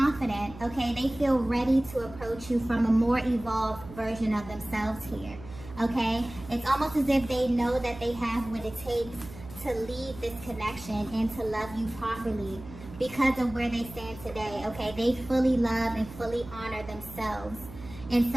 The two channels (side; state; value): right; noise; hum, 16 dB below the sound